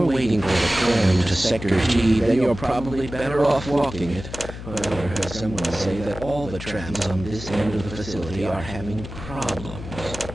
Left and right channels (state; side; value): noise; left; hum, 11 dB below the sound